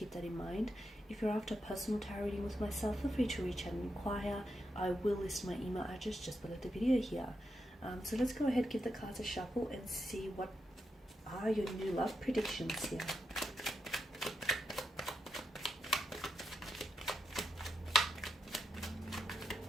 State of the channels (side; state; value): both; normal; correlation 0.84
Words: that in mind. If you're after a personal tarot reading with myself, feel free to reach out and inquire. I will list my email address just below the video here. So let's go ahead, give the cards a shuffle and see what are your new love predictions here.